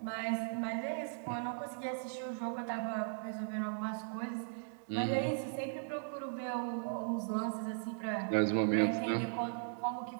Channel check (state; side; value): silent; left; digital silence